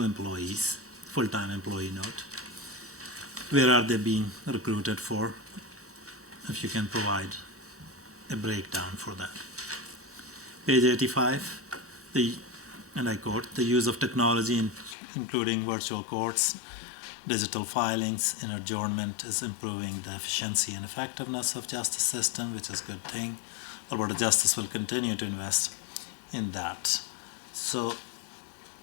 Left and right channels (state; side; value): drops out; right; at 15.0 s